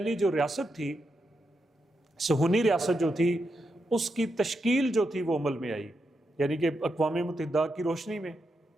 جو ریاست تھی، صہیونی ریاست جو تھی، اس کی تشکیل جو تھی وہ عمل میں آئی. یعنی کہ اقوام متحدہ کی روشنی میں،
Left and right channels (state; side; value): normal; both; correlation 0.84